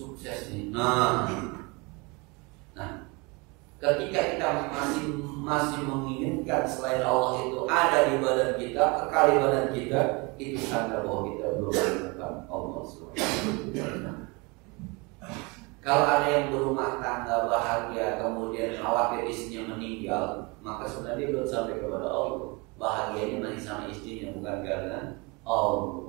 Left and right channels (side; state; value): left; quieter; 27.7 dB